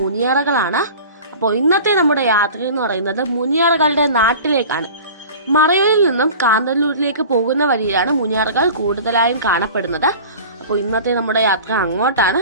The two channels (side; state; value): both; inverted; correlation -0.39